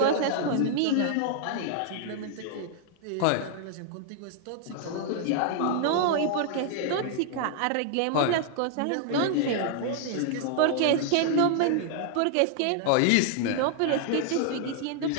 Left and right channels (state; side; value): different; both; correlation -0.01